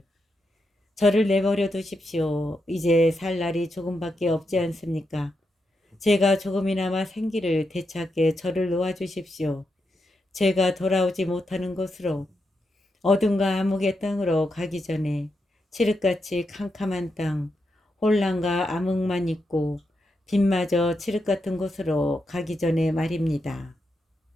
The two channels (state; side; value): normal; both; correlation 0.85